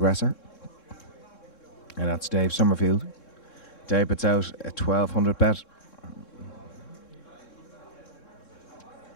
And that's Dave Summerfield. Dave puts out a 1200 bet.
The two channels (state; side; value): late; right; 3.7 ms